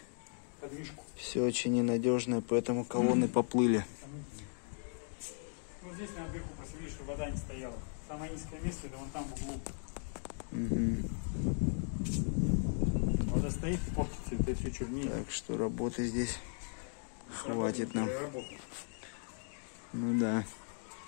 подвижку. все очень ненадежное, поэтому колонны поплыли. Вот здесь наверху просвели, чтобы вода не стояла. Самое низкое место это вон там в углу. Вода стоит и портится, это все чернее. Так что работы здесь хватит нам. Ну да.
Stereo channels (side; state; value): right; silent; 53 dB below the other